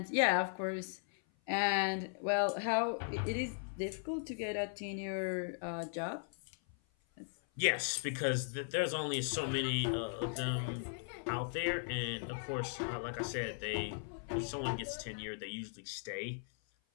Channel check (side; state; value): right; silent; 53 dB below the other